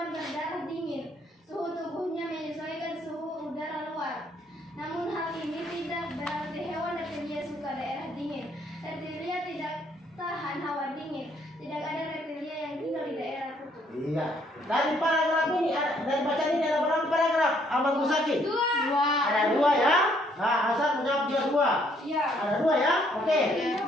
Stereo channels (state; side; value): normal; both; correlation 0.67